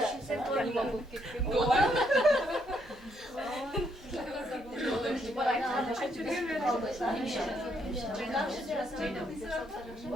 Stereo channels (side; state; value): both; normal; correlation 0.74